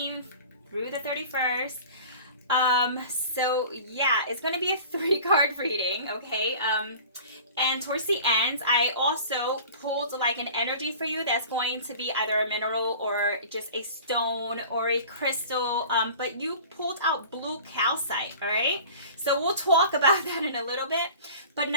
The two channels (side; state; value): both; inverted; correlation -0.42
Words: through the 31st. So yeah, it's going to be a 3-card reading, okay? And towards the end, I also pulled like an energy for you that's going to be either a mineral or just a stone or a crystal. But you pulled out blue calcite, all right? So we'll talk about that in a little bit. But